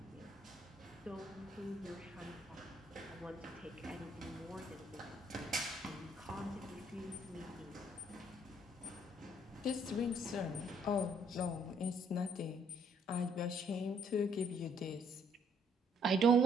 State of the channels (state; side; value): normal; both; correlation 0.65